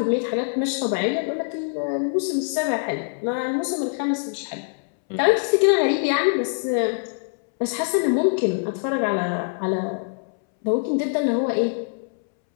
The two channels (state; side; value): silent; right; 63 dB below the other